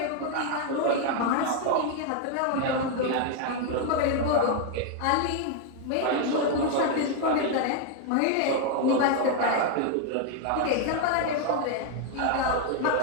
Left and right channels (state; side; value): different; both; correlation 0.00